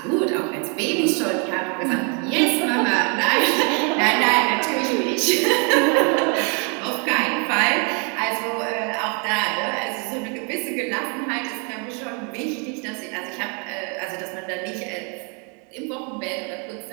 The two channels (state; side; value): quieter; left; 36.1 dB